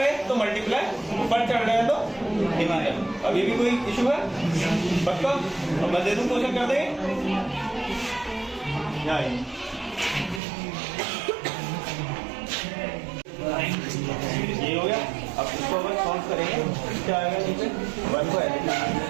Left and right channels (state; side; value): drops out; left; at 10.4 s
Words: तो मल्टीप्लाई, ऊपर चढ़ रहे तो डिवाइड। अभी भी कोई इशू है? पक्का? अब मैं दे दूं, क्वेश्चन कर देंगे। ये हो गया। अब इसको अगर सॉल्व करेंगे क्या आएगा? नीचे 1 को ऐसे